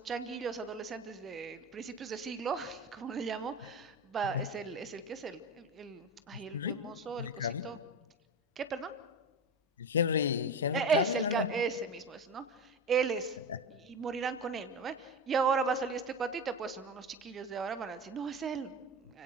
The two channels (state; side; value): normal; both; correlation 0.24